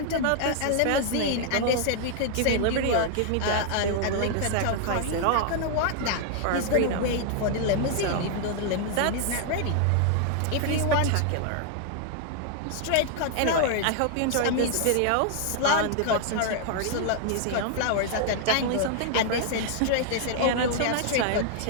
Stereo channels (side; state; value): both; different; correlation 0.00